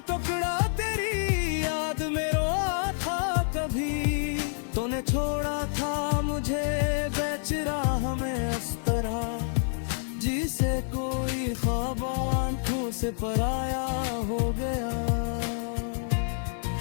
टुकड़ा तेरी याद में रोआ था कभी। तूने छोड़ा था मुझे बेच राह में अस्तरा। जिसे कोई ख्वाब आंखों से पराया हो गया।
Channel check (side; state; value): right; silent; digital silence